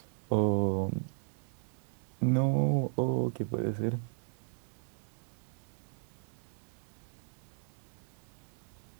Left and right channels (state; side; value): silent; left; digital silence